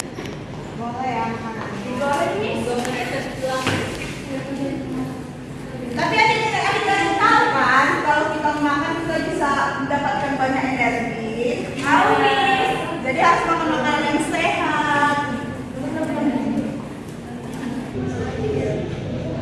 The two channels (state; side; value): identical; both; correlation 1.00